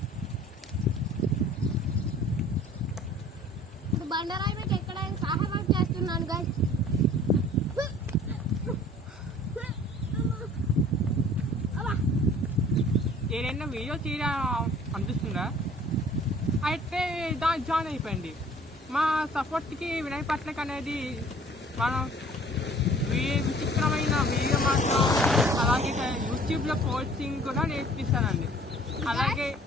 ఇప్పుడు బండరాయి మీద ఎక్కడానికి సహాయం చేస్తున్నాను గాయస్. ఏదైనా వీడియో చేయడం అనిపిస్తుందా అయితే దాని జాయిన్ అయిపోయింది. మా సపోర్ట్కి వినయ్ పట్నక్ అనేది మనం విచిత్రమైన వీడియో మాత్రం, అలాగే యూట్యూబ్లో కోచింగ్ కూడా నేర్పిస్తానండి. అలాగే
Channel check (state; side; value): normal; both; correlation 0.51